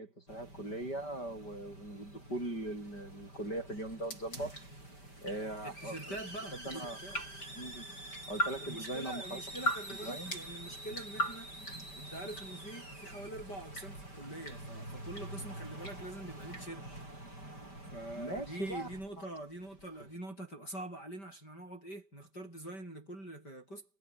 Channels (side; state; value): right; late; 5.1 ms